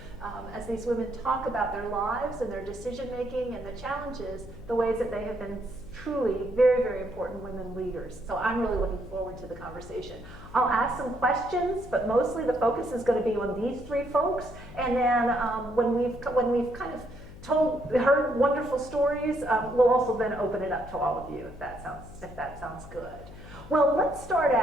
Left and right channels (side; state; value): left; noise; hum, 16 dB below the sound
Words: as these women talk about their lives and their decision making and the challenges, the ways that they have been truly very, very important women leaders. So I'm really looking forward to the conversation. I'll ask some questions, but mostly the focus is going to be on these 3 folks. And then when we've kind of heard wonderful stories, we'll also then open it up to all of you if that sounds good. Well, let's start